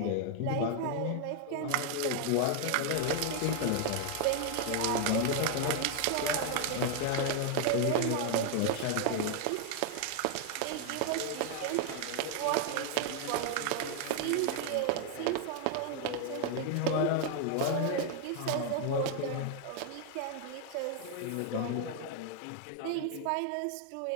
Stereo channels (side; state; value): both; different; correlation 0.00